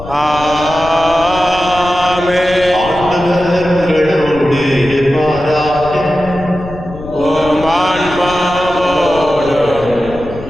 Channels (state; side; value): noise; left; rumble, 14 dB below the sound